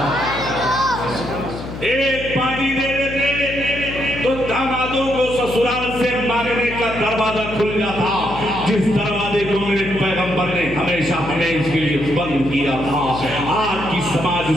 ایک باندھی دے دیتے تو دامادوں کو سسرال سے مانگنے کا دروازہ دروازہ کھل جاتا جس دروازے کو میرے پیغمبر نے ہمیشہ ہمیشہ کے لیے بند کیا تھا. آج کی سماج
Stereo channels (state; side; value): noise; left; hum, 10 dB below the sound